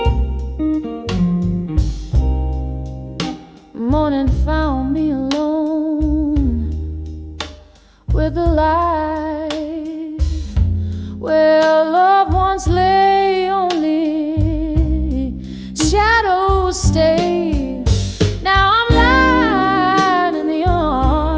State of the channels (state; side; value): identical; both; correlation 1.00